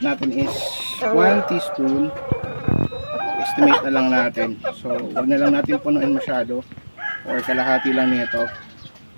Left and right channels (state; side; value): inverted; both; correlation -1.00